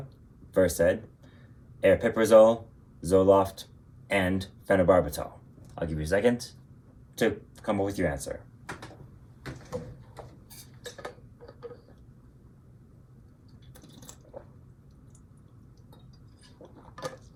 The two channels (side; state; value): both; identical; correlation 1.00